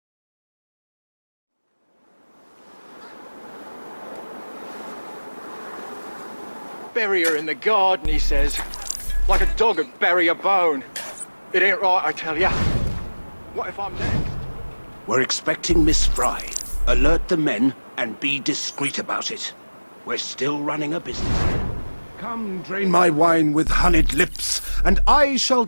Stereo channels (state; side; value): inverted; both; correlation -1.00